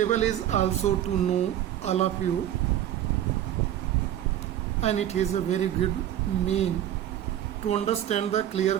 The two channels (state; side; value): quieter; left; 11.5 dB